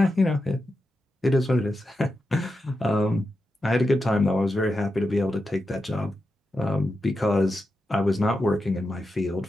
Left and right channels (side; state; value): both; normal; correlation 0.89